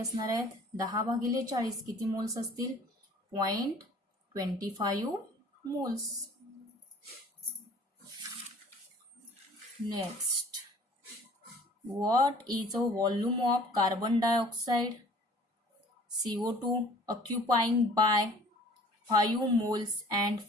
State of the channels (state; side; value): normal; both; correlation 0.50